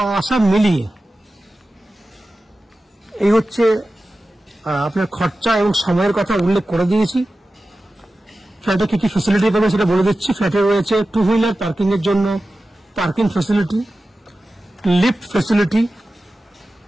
আসা মিলিয়ে। এই হচ্ছে আপনার খরচা এবং সময়ের কথা উল্লেখ করে দিয়েছি। ফ্ল্যাটে কি কি ফ্যাসিলিটি পাবেন সেটা বলে দিচ্ছি। ফ্ল্যাটে রয়েছে 2 হুইলার পার্কিং এর জন্য parking facility, lift facility,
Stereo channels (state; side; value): normal; both; correlation 0.94